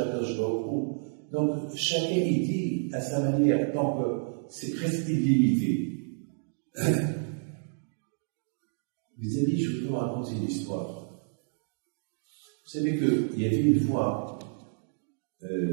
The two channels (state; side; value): silent; left; 58 dB below the other